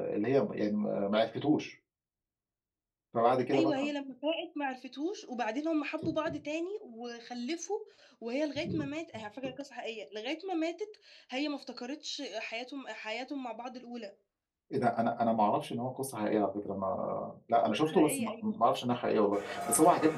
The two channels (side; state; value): both; identical; correlation 1.00